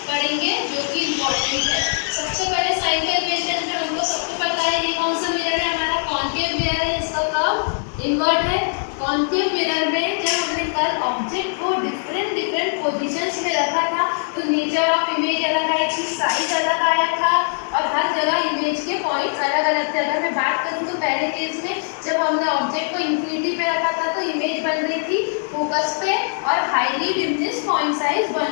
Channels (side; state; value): right; silent; digital silence